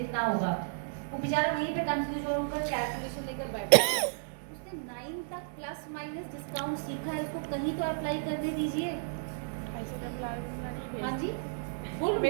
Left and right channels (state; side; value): silent; left; digital silence